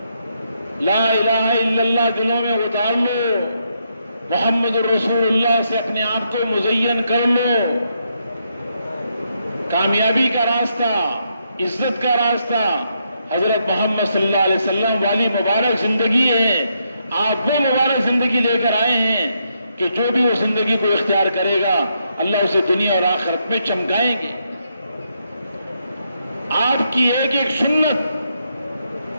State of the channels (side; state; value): both; inverted; correlation -0.78